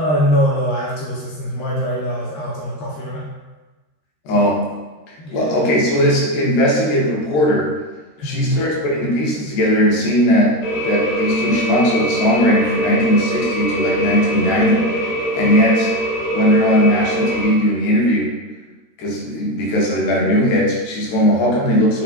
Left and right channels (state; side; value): late; right; 13 ms